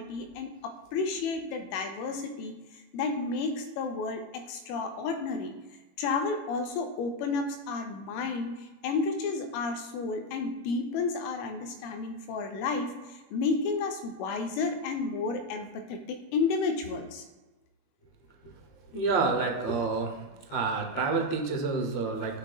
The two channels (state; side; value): late; right; 21 ms